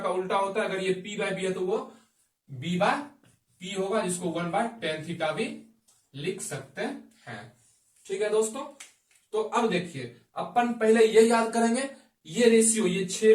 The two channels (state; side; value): identical; both; correlation 1.00